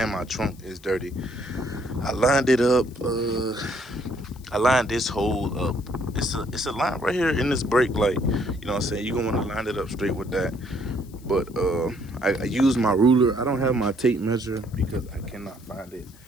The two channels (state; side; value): noise; left; hiss, 25 dB below the sound